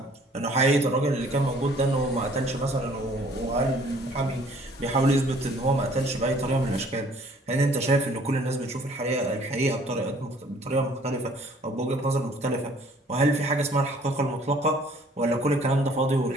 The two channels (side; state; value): both; normal; correlation 0.57